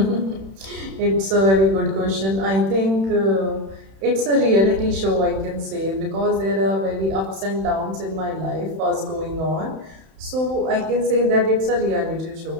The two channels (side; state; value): left; late; 31 ms